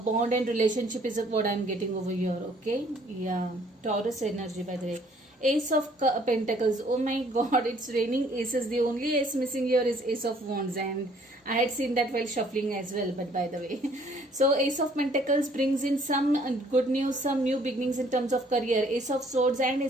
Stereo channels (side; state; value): both; normal; correlation 0.60